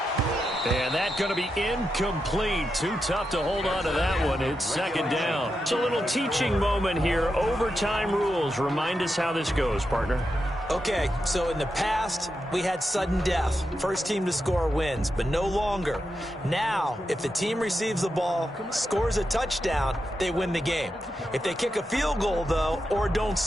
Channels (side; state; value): both; normal; correlation 0.87